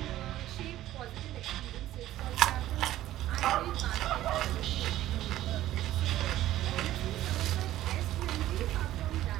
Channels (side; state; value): left; quieter; 14.2 dB